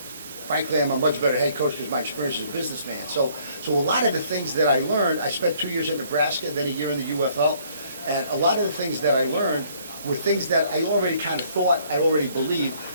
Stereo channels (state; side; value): inverted; both; correlation -0.62